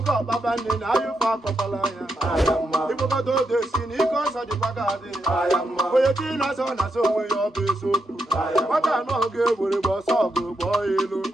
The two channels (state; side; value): normal; both; correlation 0.82